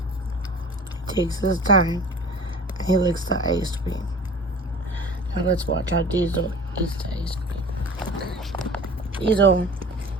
He takes his time and he licks the ice cream. Now let's watch how Diesel eats the ice cream. Diesel.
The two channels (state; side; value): normal; both; correlation 0.41